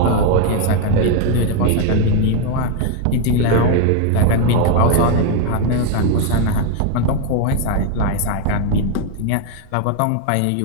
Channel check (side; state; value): both; different; correlation 0.01